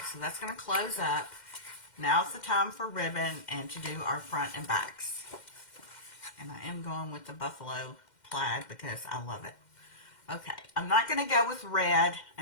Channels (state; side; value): late; right; 2.1 ms